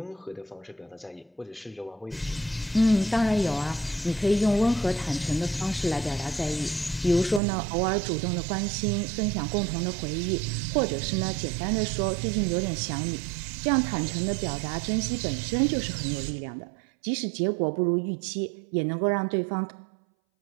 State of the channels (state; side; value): drops out; left; at 7.4 s